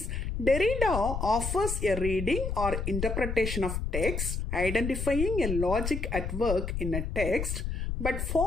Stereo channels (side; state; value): left; noise; rumble, 3 dB below the sound